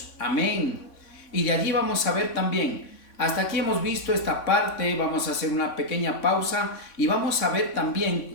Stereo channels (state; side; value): late; right; 3.5 ms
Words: Amén. Y de allí vamos a ver también, hasta aquí hemos visto esta parte, vamos a hacer una pequeña pausa y vamos a ver